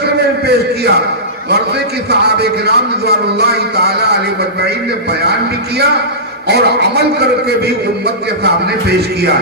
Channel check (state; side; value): normal; both; correlation -0.19